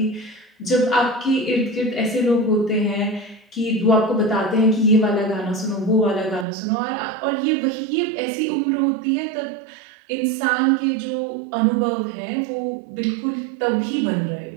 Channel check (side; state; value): left; drops out; at 6.5 s